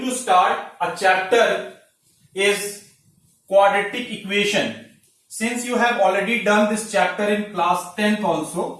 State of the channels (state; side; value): identical; both; correlation 1.00